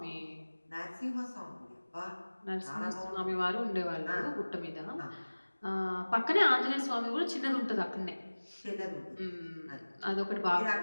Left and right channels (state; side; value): inverted; both; correlation -1.00